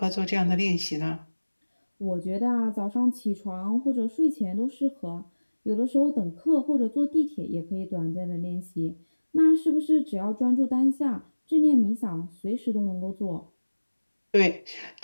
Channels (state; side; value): inverted; both; correlation -1.00